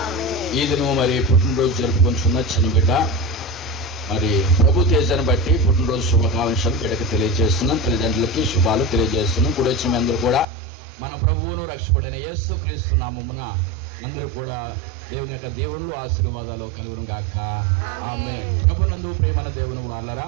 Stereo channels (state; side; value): drops out; left; at 10.5 s